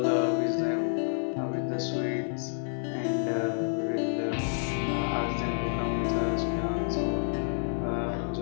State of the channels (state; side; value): silent; right; digital silence